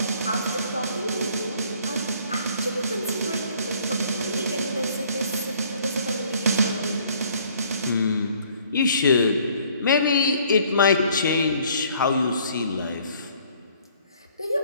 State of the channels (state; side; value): inverted; both; correlation -0.60